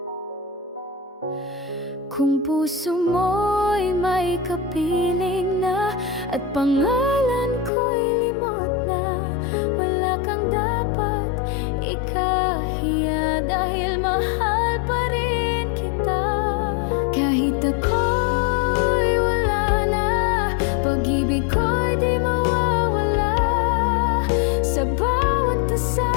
kung puso mo'y may kapiling na at pangalan ko'y limot na, wala kang dapat ikahiya dahil mahal pa rin kita. Kahit ako'y wala na, pag-ibig ko'y di mawawala. Sa bawat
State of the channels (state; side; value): drops out; right; at 7.7 s